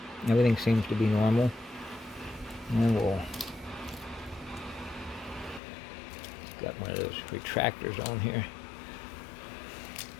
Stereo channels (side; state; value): right; drops out; at 5.6 s